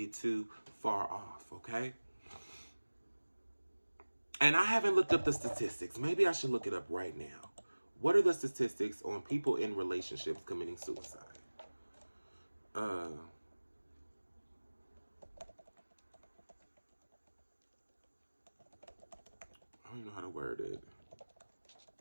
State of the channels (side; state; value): both; inverted; correlation -1.00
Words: too far off, okay? And I haven't looked up the statistics. Maybe I should look it up right now. What are the statistics on people in relationships committing suicide? I don't even know how to word it.